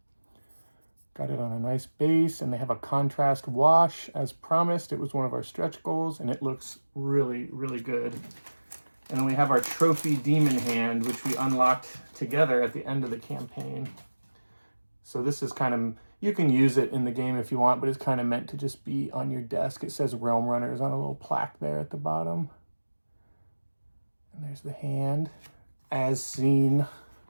Got it on a nice base, and they have a contrast wash as promised. It was one of our stretch goals, and it looks really, really good. And then we have our trophy demon hand, which we unlocked together at the end of the campaign. So this is kind of, you can use it in the game if you want, but it's kind of meant to just be on your desk. It says Realm Runners on a little plaque there at the bottom. And there's the hand as seen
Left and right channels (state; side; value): inverted; both; correlation -1.00